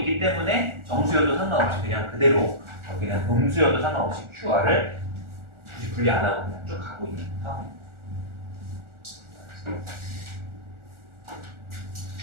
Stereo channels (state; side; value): late; left; 1.4 ms